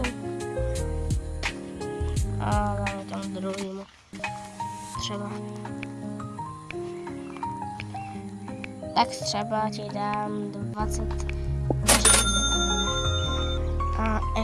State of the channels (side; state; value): both; identical; correlation 1.00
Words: A dáme tam druhýmu. Třeba. Tak třeba ti dám 20. A